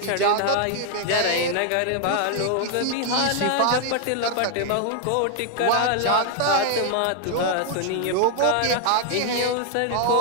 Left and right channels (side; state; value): both; different; correlation 0.00